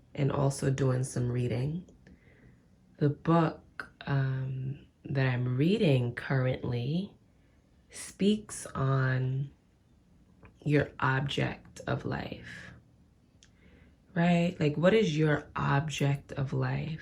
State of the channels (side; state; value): both; identical; correlation 1.00